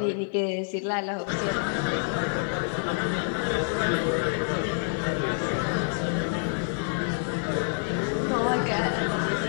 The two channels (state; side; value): silent; right; 60 dB below the other